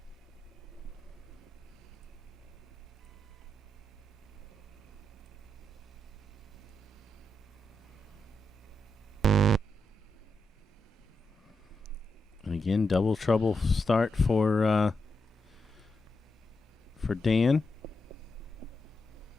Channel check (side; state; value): both; normal; correlation 0.86